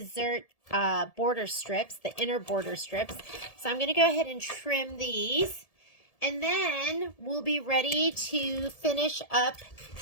border strips, the inner border strips. So I'm going to go ahead and trim these. And then we'll be ready to finish up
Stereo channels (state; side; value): late; right; 1.7 ms